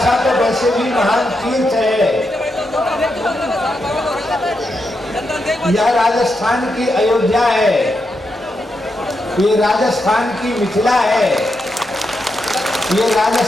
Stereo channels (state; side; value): normal; both; correlation 0.84